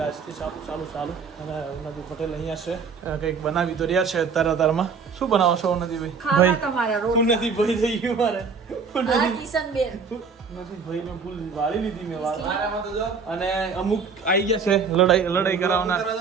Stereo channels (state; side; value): quieter; left; 5.4 dB